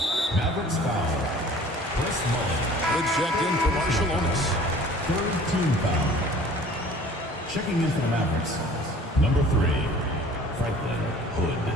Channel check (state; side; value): normal; both; correlation 0.49